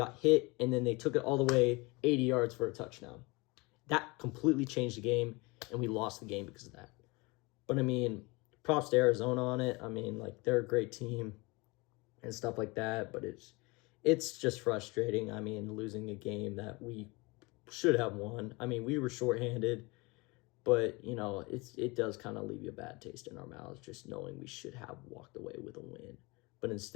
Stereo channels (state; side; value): quieter; right; 25.5 dB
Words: hit, and then they took it all the way 80 yards for a touchdown. That completely changed the game, and we lost the game because of that. But I mean, props to Arizona on it. I mean, like, they're a great team and stuff like that, but it's just frustrating. I mean, losing a game that we should have won. I mean, we were shorthanded, but, it does kind of leave you a bad taste in our mouths just knowing we should have walked away with a win. But